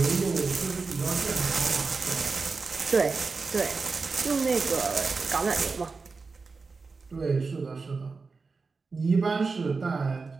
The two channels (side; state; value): left; quieter; 4.4 dB